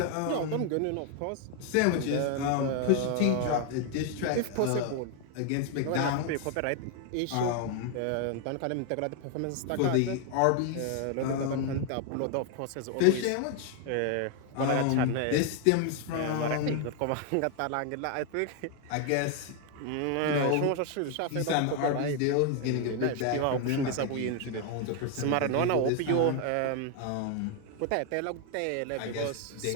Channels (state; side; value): different; both; correlation 0.01